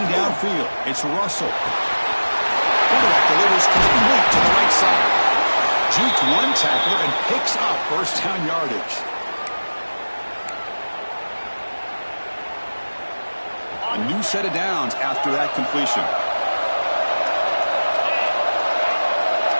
downfield, it's Russell. Quarterback delivers complete to the right side. Juked one tackler and picks up first down yardage. A new set of downs after that completion.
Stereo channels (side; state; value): both; inverted; correlation -1.00